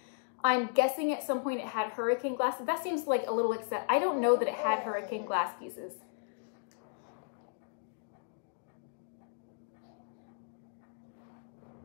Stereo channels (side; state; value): right; silent; digital silence